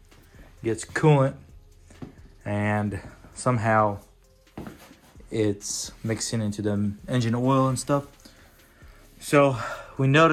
gets coolant and somehow it's mixing into the engine oil and stuff. So we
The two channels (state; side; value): identical; both; correlation 1.00